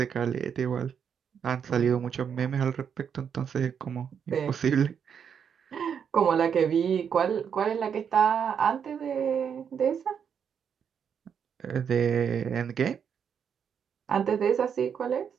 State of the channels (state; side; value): quieter; left; 7.5 dB